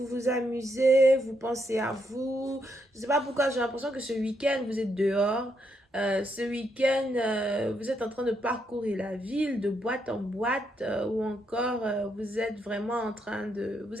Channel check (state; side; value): normal; both; correlation 0.78